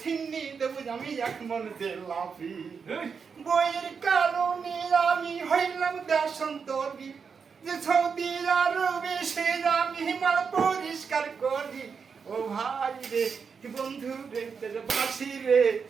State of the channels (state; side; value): quieter; left; 5.9 dB